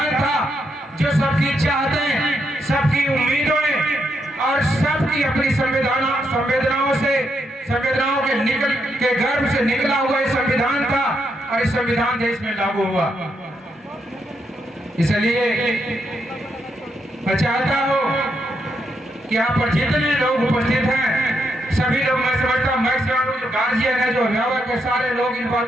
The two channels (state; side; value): normal; both; correlation 0.80